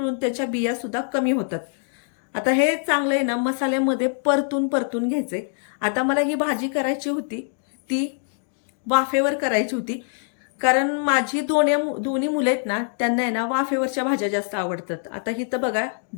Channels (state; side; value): silent; right; 63 dB below the other